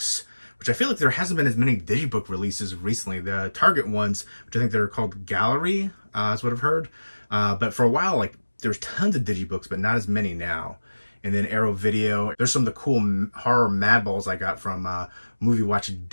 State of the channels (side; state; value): both; inverted; correlation -1.00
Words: which I feel like there hasn't been as many digibook releases recently. The Target ones, which I think they're called Gallery, is what I've heard. But for a while, like, there's tons of digibooks, but not as many now. And then Arrow Video. There's some of the cool horror madballs I got from Movie Watch